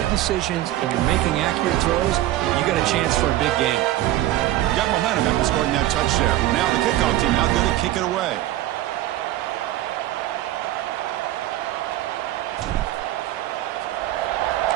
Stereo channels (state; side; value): quieter; left; 14.8 dB